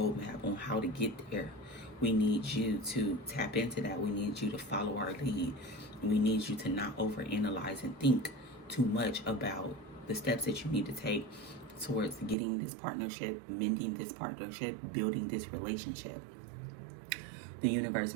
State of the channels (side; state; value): left; drops out; at 12.4 s